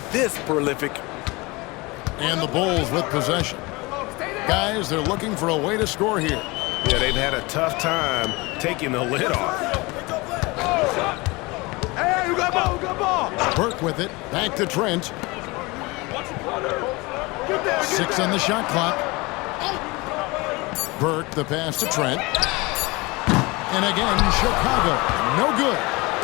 this prolific. And the Bulls with possession. Guys, they're looking for a way to score here. Yeah, they've had a tough time taking the lid off. Hey, you got ball, you got ball. Burke with it. Back to Trent. 6 on the shot clock. Burke, the pass to Trent. And again, Chicago. No good.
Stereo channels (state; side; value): quieter; right; 24.2 dB